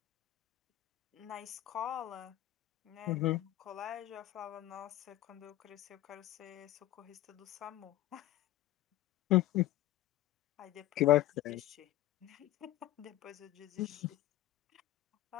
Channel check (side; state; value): right; quieter; 15.3 dB